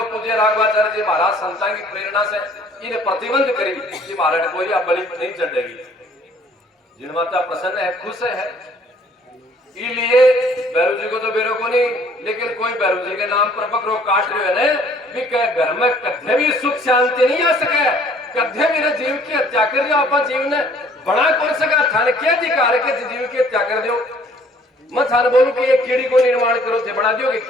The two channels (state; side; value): normal; both; correlation 0.58